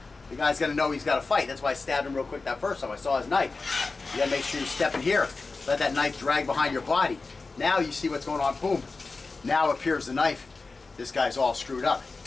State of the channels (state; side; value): quieter; right; 3.9 dB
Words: The guy's gonna know he's got to fight. That's why I stabbed him real quick that first time. I saw his knife. You gotta make sure you step in here. Let that knife drag behind your body. Now you see what's going on, boom. Now appears the knife. This guy's all screwed up.